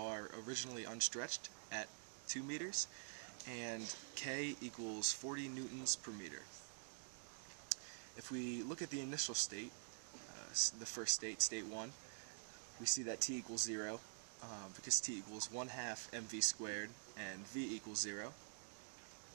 originally unstretched at 2 meters, and K equals 40 newtons per meter. If we look at the initial state, the first state, state 1, we see that T equals 0, because T equals 1/2 mv squared and V equals 0.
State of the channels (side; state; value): left; silent; digital silence